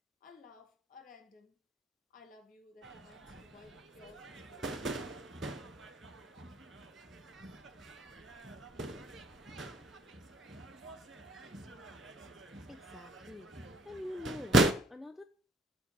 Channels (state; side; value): normal; both; correlation 0.60